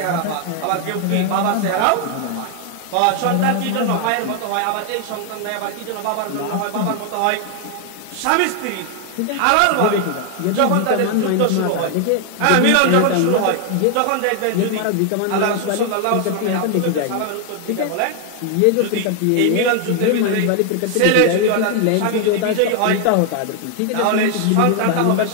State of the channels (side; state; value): both; different; correlation 0.00